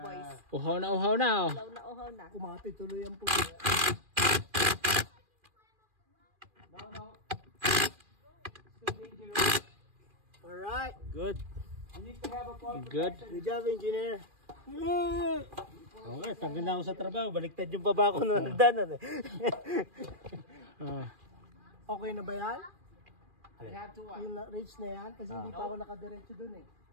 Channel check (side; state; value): left; late; 2.4 ms